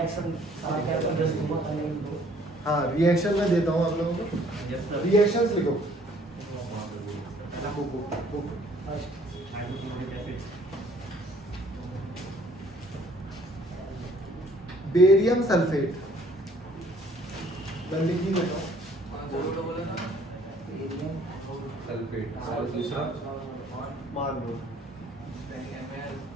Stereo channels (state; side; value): normal; both; correlation 0.59